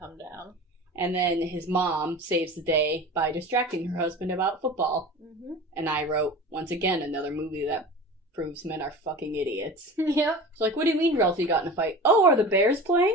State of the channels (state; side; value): normal; both; correlation 0.35